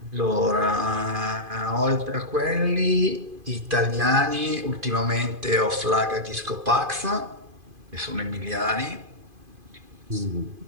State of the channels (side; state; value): left; late; 2.5 ms